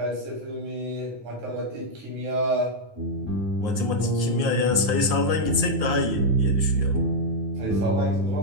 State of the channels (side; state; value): left; late; 9.4 ms